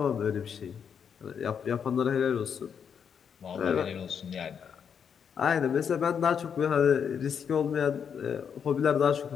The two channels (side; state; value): right; quieter; 7.3 dB